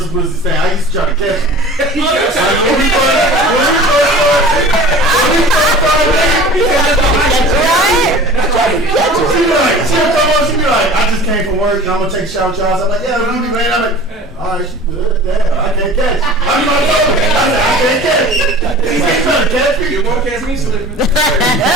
pussy stank. I used to try to catch him. She'll come on, she'll be like, I just came from work and I'm gonna take a shower. I'm like, yeah, Ruby, man. I'm like, alright, she good. Damn, I can't catch it. I'm not talking. I said, I can't catch it. You ain't trying to catch me. You won't catch me slipping. Good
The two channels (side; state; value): both; normal; correlation 0.41